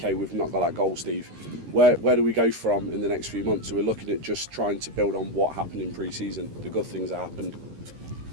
we've not got that goal, Steve. Where do we go from in the next few months? So we're looking at just trying to build on what happened in pre-season, the good things that happened.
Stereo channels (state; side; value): late; left; 13 ms